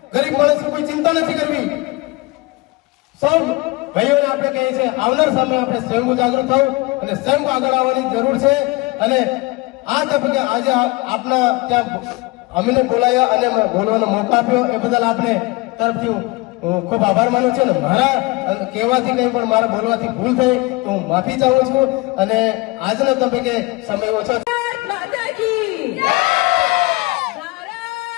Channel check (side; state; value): right; quieter; 22.9 dB